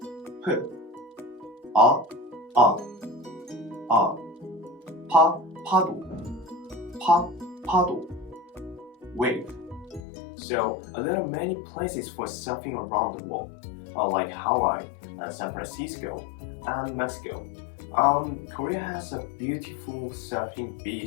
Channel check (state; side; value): drops out; right; at 10.1 s